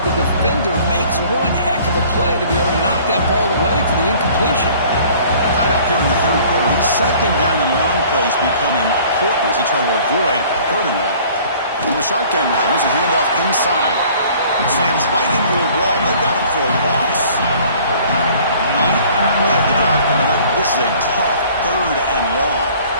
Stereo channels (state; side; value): inverted; both; correlation -0.52